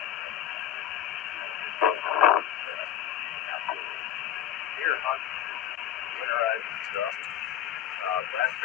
Here, hunt, winterize and stuff. Last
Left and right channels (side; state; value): right; quieter; 11.1 dB